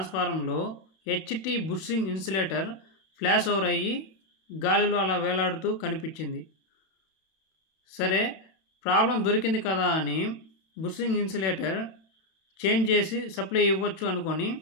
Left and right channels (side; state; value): right; late; 31 ms